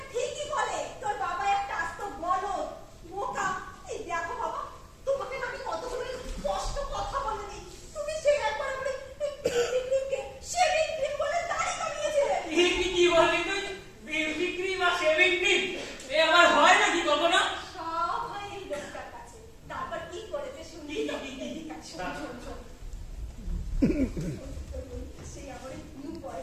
ঠিকই বলে তোর বাবা একটা আস্ত বলদ, বোকা। এই দেখো বাবা, তোমাকে আমি কতগুলো স্পষ্ট কথা বলিনি, তুমি সেই একবার আমাকে শেভিং ক্রিম বলে দাড়ি কামিয়েছিলে। কি বললি তুই? বিউটি ক্রিম আর শেভিং ক্রিম এ আমার হয় নাকি কখনো? সব হয় এই লোকটার কাছে। তারপর কি করেছে শুনি তো? এদিকে শোন শোন শোন। সেই আমার নিউ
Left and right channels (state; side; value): identical; both; correlation 1.00